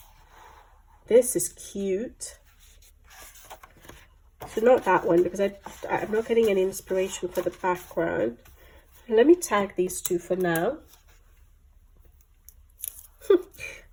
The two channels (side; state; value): both; identical; correlation 1.00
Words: This is cute. So not that one because I'm not getting any inspiration for the background. Let me tag these two for now.